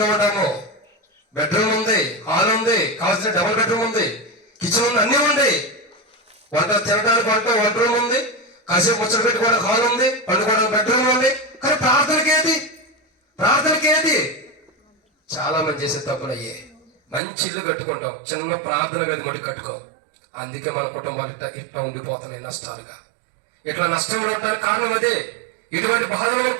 ఉంటామో. బెడ్రూమ్ ఉంది, హాల్ ఉంది, కావాల్సిన డబుల్ బెడ్రూమ్ ఉంది, కిచెన్ ఉంది, అన్నీ ఉంది. వంట తినడానికి వంట రూమ్ ఉంది, కాసేపు ముచ్చట పెట్టుకోవడానికి హాల్ ఉంది, పండుకోవడానికి బెడ్రూమ్ ఉంది. కానీ ప్రార్థనకేది? ప్రార్థనకేది? చాలా మంది చేసే తప్పులు అయ్యే. మంచి ఇల్లు కట్టుకుంటాం, చిన్న ప్రార్థన గది మటుకు కట్టుకోం. అందుకే మన కుటుంబాలు ఇట్లా ఉండిపోతున్నాయి నష్టాలుగా. ఇట్లా నష్టంలో ఉండడానికి కారణం అదే. ఇటువంటి బాధలు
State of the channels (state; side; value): drops out; left; at 17.2 s